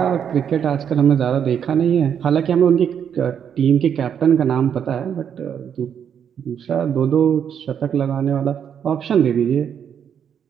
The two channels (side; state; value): left; quieter; 8.3 dB